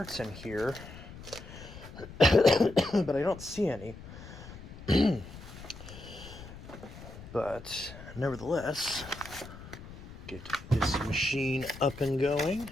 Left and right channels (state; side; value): noise; left; rumble, 15 dB below the sound